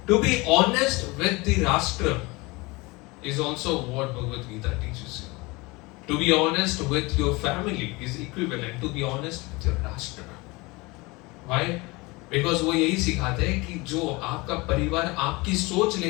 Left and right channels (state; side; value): quieter; right; 24.3 dB